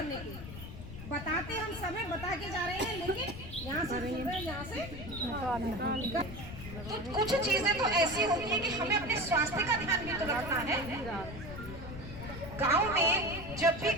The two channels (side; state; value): left; noise; rumble, 10 dB below the sound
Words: के। बताते हम समय बता के जा रहे हैं, लेकिन यहाँ से तो कुछ चीजें तो ऐसी होती है कि हमें अपने स्वास्थ्य का ध्यान भी तो रखना है। गांव में जब भी